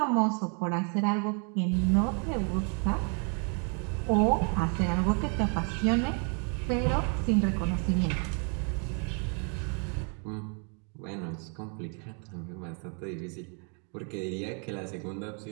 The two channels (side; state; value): left; quieter; 38.9 dB